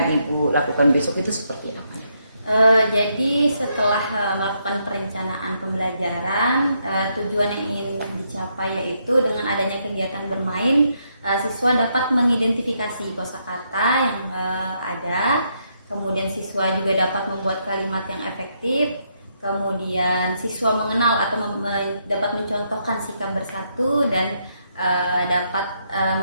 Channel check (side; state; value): both; inverted; correlation -0.77